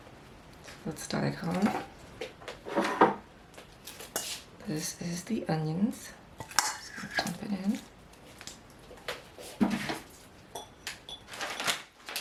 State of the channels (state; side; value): identical; both; correlation 1.00